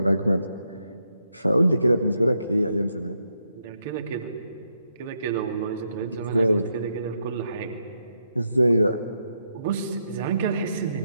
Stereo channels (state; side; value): inverted; both; correlation -0.80